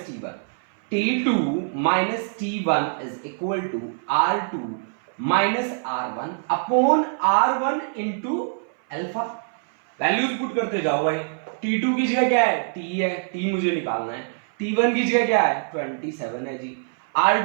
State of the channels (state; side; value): silent; left; 59 dB below the other